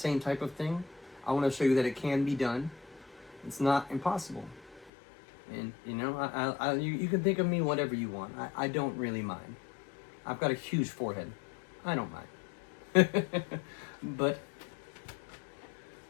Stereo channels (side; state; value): right; drops out; at 4.9 s